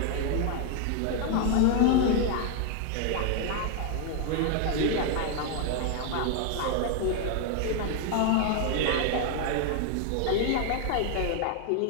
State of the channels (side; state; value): both; different; correlation 0.00